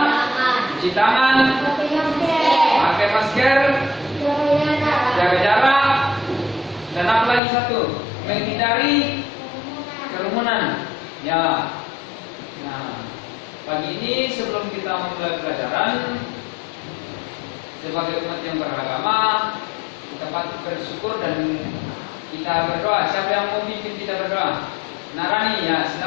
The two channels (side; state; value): right; drops out; at 7.4 s